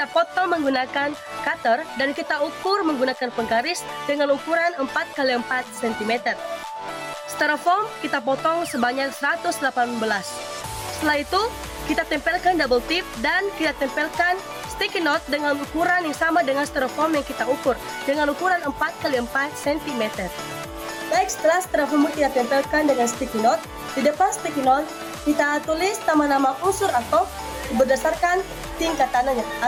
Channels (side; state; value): both; identical; correlation 1.00